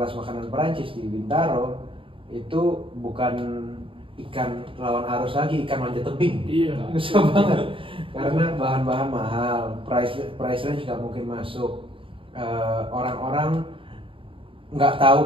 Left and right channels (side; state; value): left; late; 0.25 ms